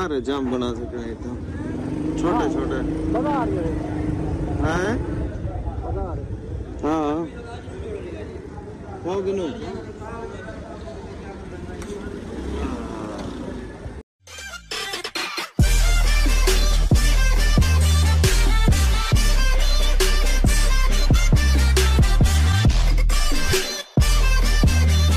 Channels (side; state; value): both; identical; correlation 1.00